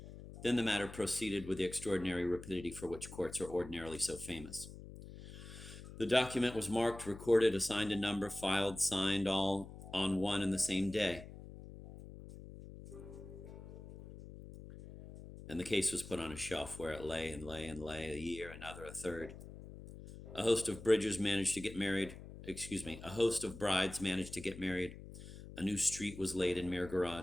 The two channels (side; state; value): left; noise; hum, 14 dB below the sound